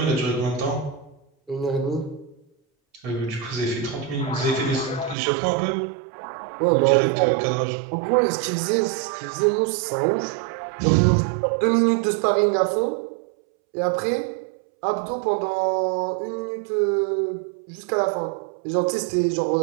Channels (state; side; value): drops out; left; at 5.2 s